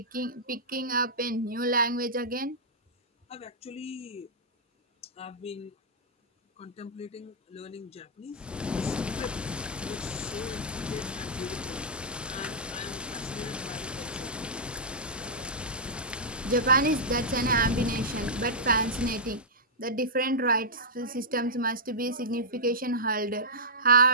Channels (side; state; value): both; normal; correlation -0.13